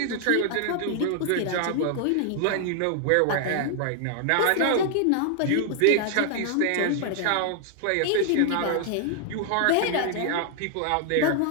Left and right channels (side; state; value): both; different; correlation 0.00